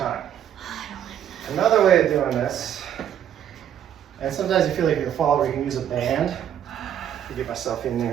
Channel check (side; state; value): left; quieter; 10.0 dB